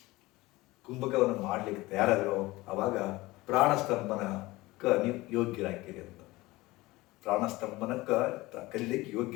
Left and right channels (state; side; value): quieter; right; 20.1 dB